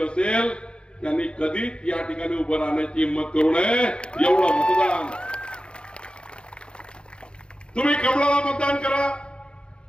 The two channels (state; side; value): late; right; 0.054 ms